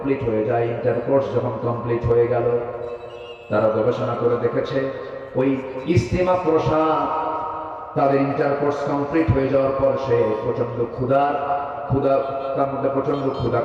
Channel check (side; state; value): both; identical; correlation 1.00